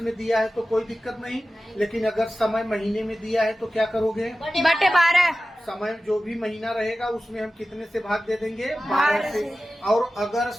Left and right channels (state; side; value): normal; both; correlation 0.95